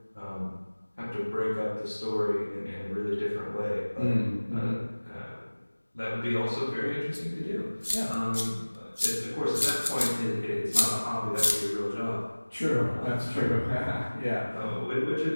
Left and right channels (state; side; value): inverted; both; correlation -1.00